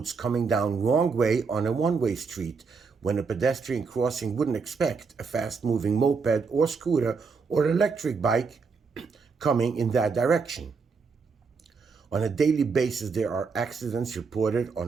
coming down wrong way on a one-way street when a pedestrian crossing wouldn't expect a fast-moving moped or scooter or electric bike coming in that direction. On a daily basis, there are accidents reported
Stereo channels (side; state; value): left; quieter; 5.0 dB